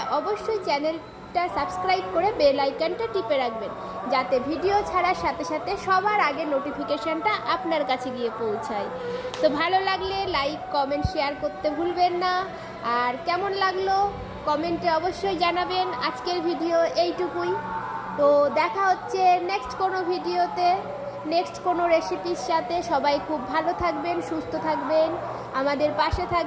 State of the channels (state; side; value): identical; both; correlation 1.00